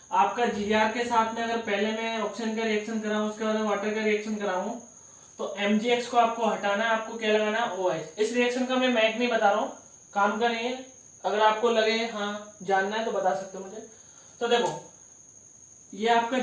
आपका Gr के साथ में, अगर पहले मैं ऑक्सीजन का रिएक्शन कराऊं उसके बाद वाटर का रिएक्शन कराऊं, तो MgX को आपको हटाना है, आपको क्या लगाना है OH। इस रिएक्शन का मैं मैक नहीं बता रहा हूं, काम का नहीं है, अगर आपको लगे हाँ जानना है तो बता सकते हो मुझे। तो देखो ये आपका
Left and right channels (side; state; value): both; identical; correlation 1.00